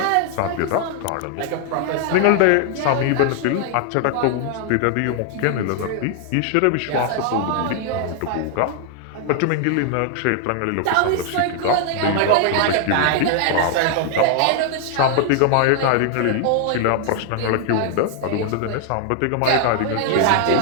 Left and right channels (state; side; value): different; both; correlation 0.00